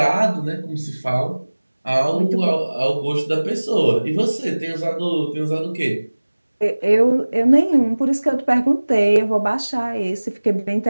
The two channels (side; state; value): both; inverted; correlation -1.00